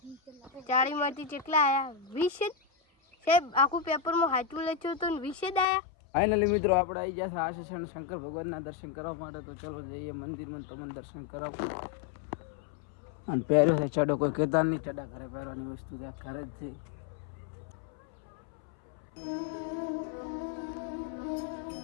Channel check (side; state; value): right; drops out; at 5.7 s